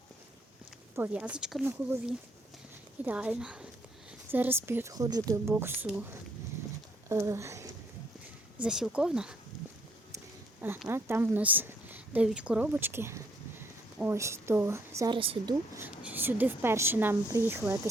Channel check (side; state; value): both; normal; correlation 0.68